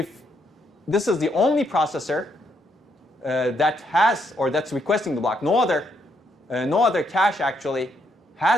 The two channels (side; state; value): both; normal; correlation 0.75